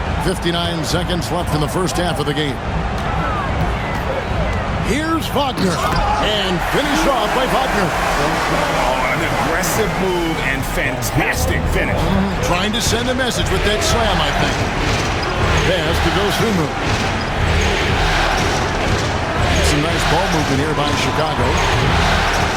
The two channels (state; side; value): identical; both; correlation 1.00